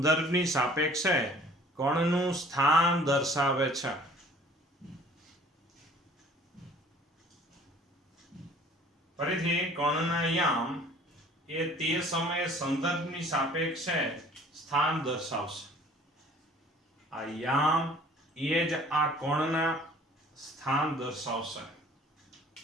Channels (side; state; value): both; normal; correlation 0.52